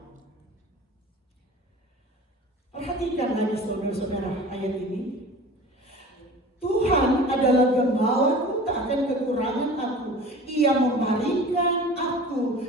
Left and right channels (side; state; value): both; normal; correlation 0.40